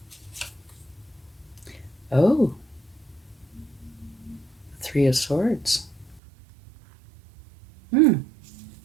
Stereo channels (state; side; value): drops out; left; at 6.2 s